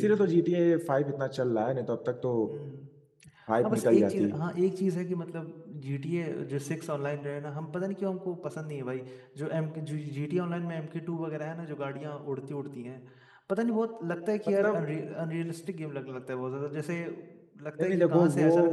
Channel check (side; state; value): both; identical; correlation 1.00